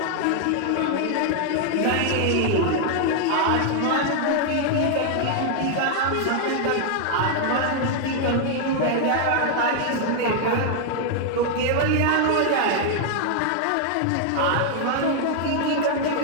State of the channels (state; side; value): different; both; correlation 0.00